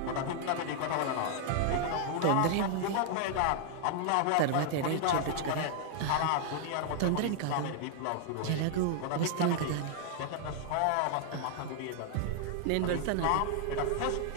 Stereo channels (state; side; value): different; both; correlation 0.00